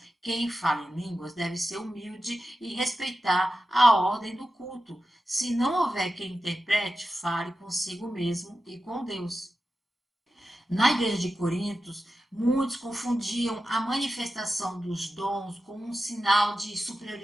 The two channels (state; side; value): normal; both; correlation 0.92